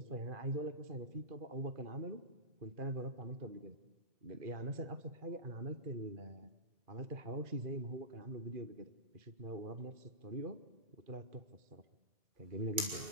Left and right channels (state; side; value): late; left; 2.3 ms